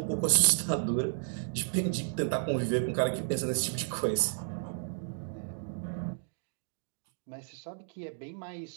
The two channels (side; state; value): left; silent; digital silence